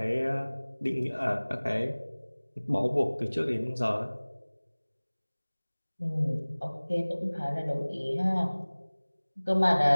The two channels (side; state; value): both; inverted; correlation -1.00